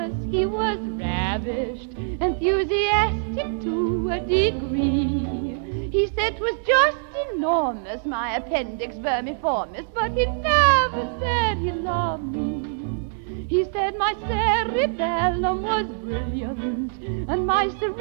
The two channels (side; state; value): left; silent; digital silence